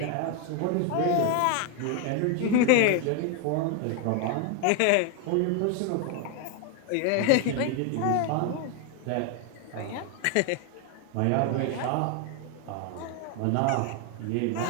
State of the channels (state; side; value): different; both; correlation 0.01